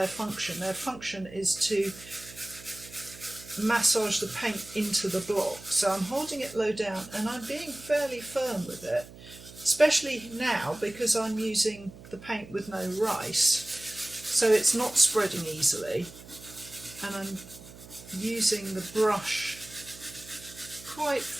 function. Their function is to massage the paint into the block. So I'm holding it low down and I'm being fairly firm with it, especially now because I'm using the paint with no rice, so it's not spreading easily, and I'm using the brush quite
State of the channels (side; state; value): right; noise; hum, 18 dB below the sound